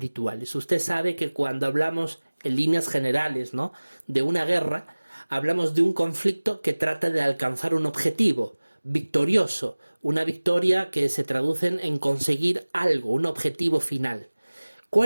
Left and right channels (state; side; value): inverted; both; correlation -1.00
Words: Usted sabe que cuando hablamos en líneas generales, ¿no?, de una guerra, hablamos de un conflicto que trata de alcanzar un objetivo victorioso, una victoria que se traduce en conseguir algo, un objetivo final.